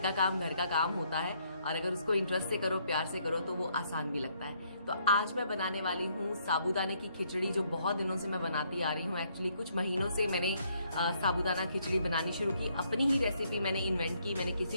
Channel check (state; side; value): inverted; both; correlation -0.70